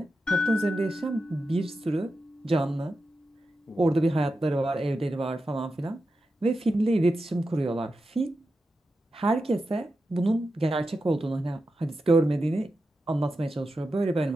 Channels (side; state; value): both; normal; correlation 0.90